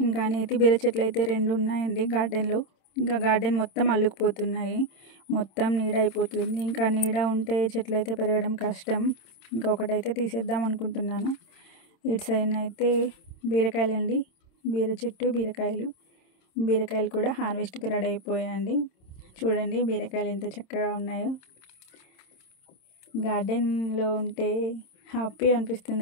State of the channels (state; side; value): late; right; 27 ms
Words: నేతి బీర చెట్లు అయితే 2 ఉన్నాయండి గార్డెన్లో. ఇంకా గార్డెన్ మొత్తం అల్లుకుపోతున్నాయి, మొత్తం నీడ అయిపోతుంది. ఇంకా నీడ ఉంటే చెట్లు అయితే పెరగడం కష్టం. ఇంకా ఒకటైతే తీసేద్దాం అనుకుంటున్నాను. ఇటు సైడ్ అయితే బీరకాయలండి, బీర చెట్టు, బీరకాయలు కూడా హార్వెస్ట్కి రెడీ అయిపోయాయండి. చూడండి బీరకాయలు ఎంత చక్కగా ఉన్నాయో. గార్డెన్లో ఉంటే హ్యాపీ